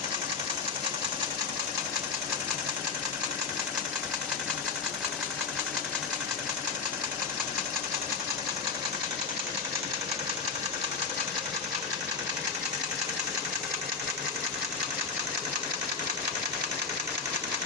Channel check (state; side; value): quieter; right; 5.2 dB